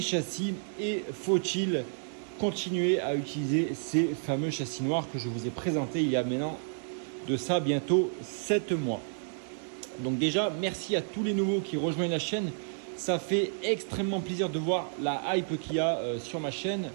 châssis et faut-il continuer à utiliser ces fameux châssis noirs que je vous ai présentés il y a maintenant de ça bientôt 7 mois. Donc déjà, merci à tous les nouveaux qui rejoignent la chaîne. Ça fait extrêmement plaisir de voir la hype qu'il y a sur ma chaîne,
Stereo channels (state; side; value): silent; left; digital silence